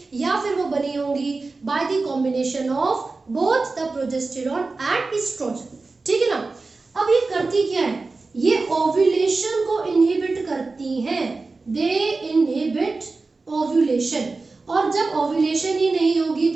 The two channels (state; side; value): quieter; left; 3.7 dB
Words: या फिर वो बनी होंगी by the combination of both the progesterone and estrogen, ठीक है ना। अब ये करती क्या है, ये ओव्यूलेशन को इनहिबिट करती हैं, दे इनहिबिट ओव्यूलेशन। और जब ओव्यूलेशन ही नहीं होगी